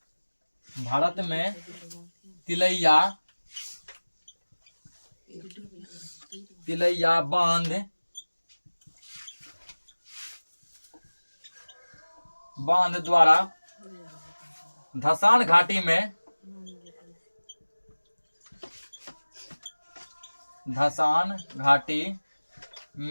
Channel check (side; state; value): both; inverted; correlation -1.00